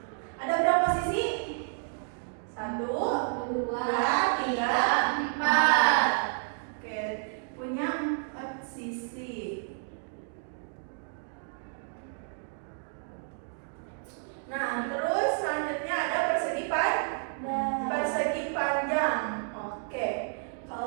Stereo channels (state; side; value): silent; left; 58 dB below the other